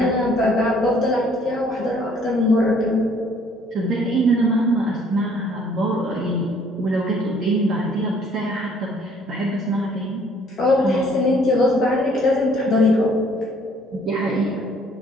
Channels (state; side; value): normal; both; correlation 0.60